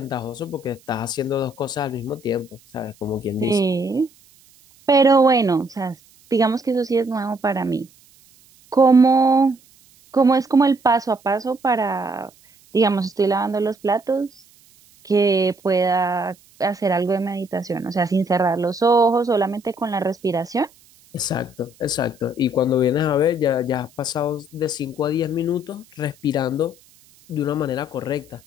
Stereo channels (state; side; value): noise; right; hiss, 29 dB below the sound